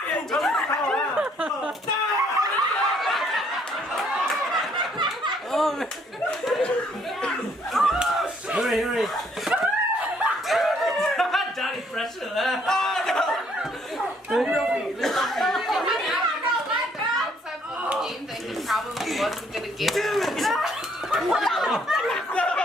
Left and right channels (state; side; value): normal; both; correlation 0.66